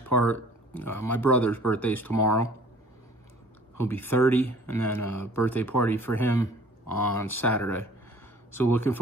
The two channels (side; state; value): both; normal; correlation 0.51